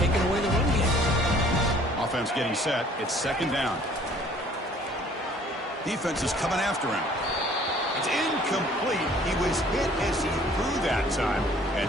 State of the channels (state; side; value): normal; both; correlation 0.55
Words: away the run game. Offense getting set. It's 2nd down. Defense is coming after him. It's incomplete. He was hit as he threw that time. And